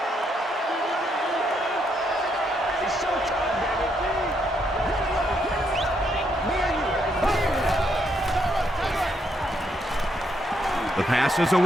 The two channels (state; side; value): normal; both; correlation 0.75